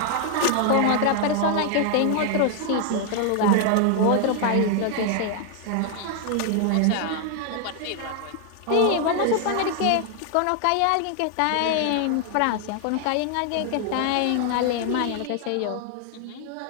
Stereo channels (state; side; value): different; both; correlation 0.00